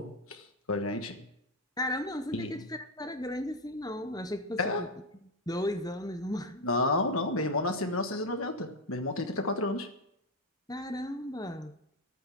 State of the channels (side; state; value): both; normal; correlation 0.06